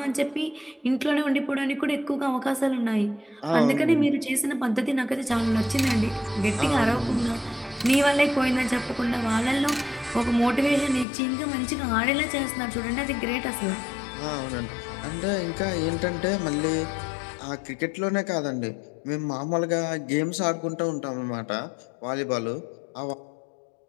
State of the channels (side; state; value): right; drops out; at 11.1 s